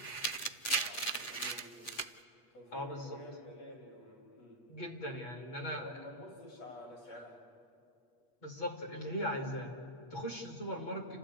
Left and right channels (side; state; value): right; late; 8.4 ms